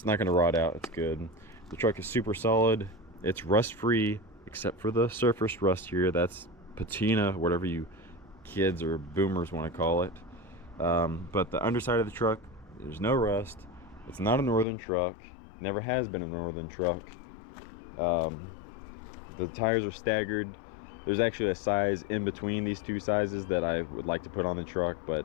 not going to rot out. It's good. The truck is super solid. It's rust free except for the surface rust here. That's patina, whatever you kids or boomers want to call it. But the underside of the truck, there's no rust. It's not a northern truck, never has been a northern truck. The tires are staggered. There's actually a size in between these two sizes that I would like to put on the truck, but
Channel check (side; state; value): right; drops out; at 14.7 s